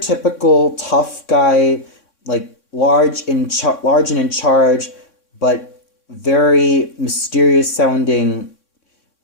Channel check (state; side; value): late; right; 3.6 ms